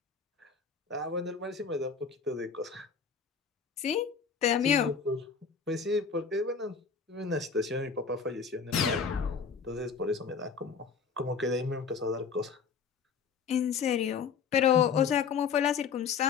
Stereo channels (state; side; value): quieter; right; 6.0 dB